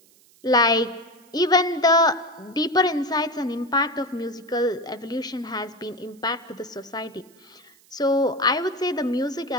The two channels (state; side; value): noise; right; hiss, 29 dB below the sound